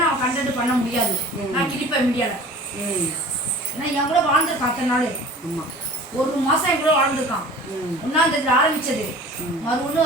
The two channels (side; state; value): both; normal; correlation 0.43